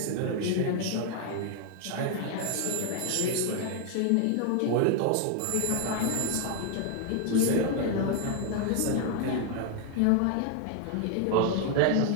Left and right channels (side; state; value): both; different; correlation 0.00